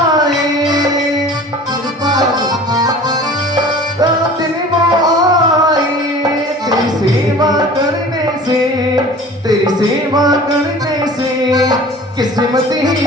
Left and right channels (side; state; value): both; normal; correlation 0.43